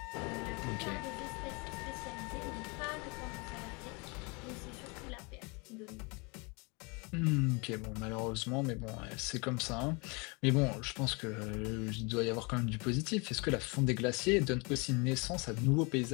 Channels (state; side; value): quieter; right; 29.7 dB